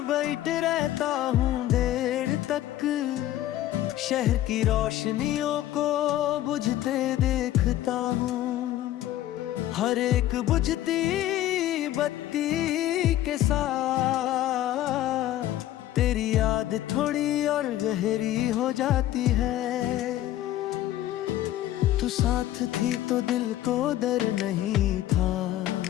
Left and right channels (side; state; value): right; quieter; 13.6 dB